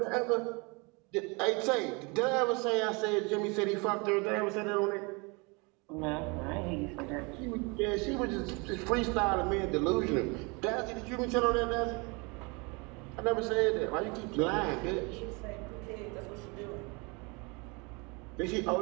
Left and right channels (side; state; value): left; quieter; 29.3 dB